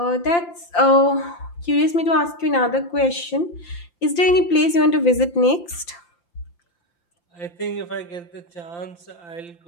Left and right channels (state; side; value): late; right; 5.8 ms